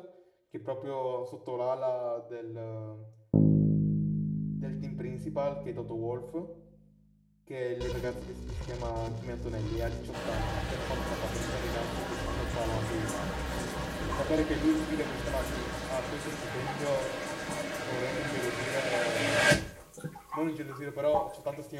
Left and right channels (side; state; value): both; identical; correlation 1.00